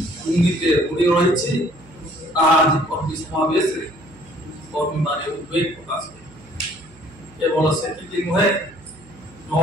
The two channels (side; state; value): right; noise; hum, 24 dB below the sound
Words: बुड़ी रही आज कर्मी समावेश कर्मी मान उद्वेग प्रकाश केवल से नुहे